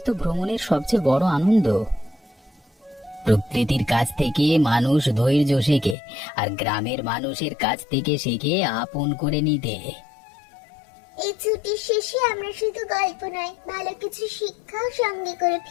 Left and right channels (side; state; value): right; drops out; at 6.0 s